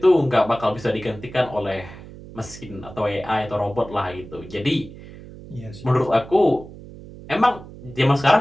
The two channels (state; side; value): noise; right; hum, 16 dB below the sound